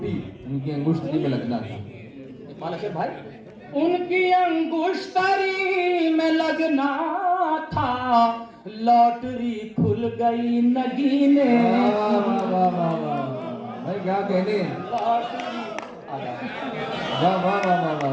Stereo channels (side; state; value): both; identical; correlation 1.00